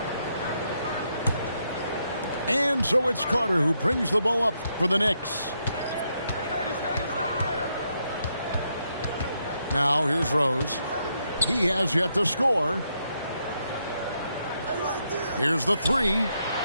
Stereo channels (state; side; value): inverted; both; correlation -0.79